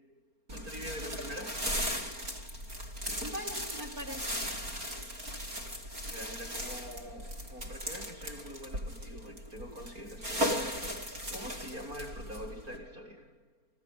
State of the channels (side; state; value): left; late; 4.4 ms